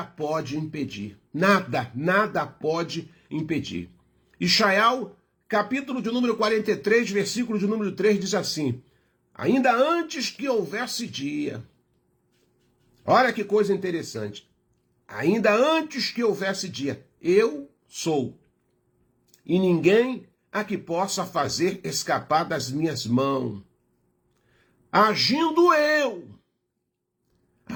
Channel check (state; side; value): identical; both; correlation 1.00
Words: pode impedir. Nada pode impedir. Ishaiah, capítulo de número 43, versículo de número 3, diz assim, ainda antes que houvesse dia, olha que coisa interessante, ainda antes que houvesse dia, eu sou. e ninguém a que possa fazer escapar das minhas mãos. Agindo eu,